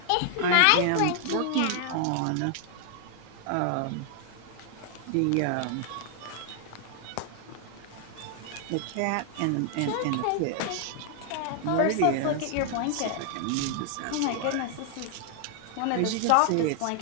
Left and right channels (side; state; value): both; different; correlation 0.00